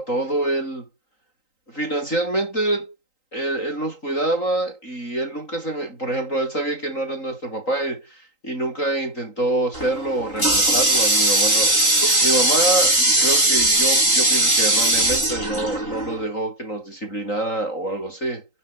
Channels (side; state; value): right; late; 3.9 ms